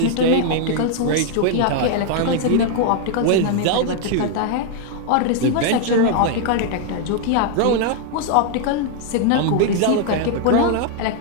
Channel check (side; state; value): both; different; correlation 0.00